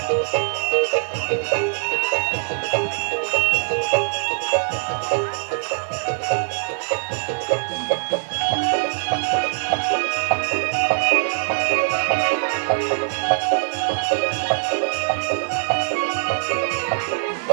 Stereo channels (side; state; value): left; silent; digital silence